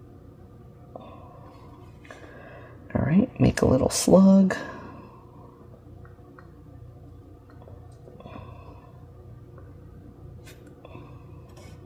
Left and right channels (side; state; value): both; identical; correlation 1.00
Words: All right, make a little slug.